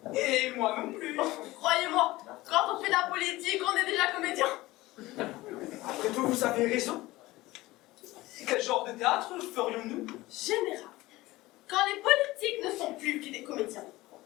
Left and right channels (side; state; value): right; quieter; 18.8 dB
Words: Et moi non plus. Croyez-moi, quand on fait de la politique, on est déjà comédien. Après tout, vous avez raison. Quel genre de théâtre ferions-nous? Général, quand les politiques ne sont plus que des comédiens,